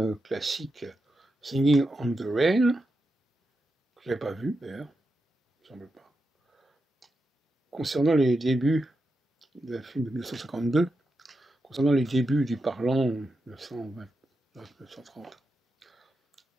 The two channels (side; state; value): both; normal; correlation 0.88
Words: classique Singing on the Rain, que je n'avais pas vu d'ailleurs, il me semble pas. Concernant les débuts d'un film de 1952, concernant les débuts du parlant 1929-1930.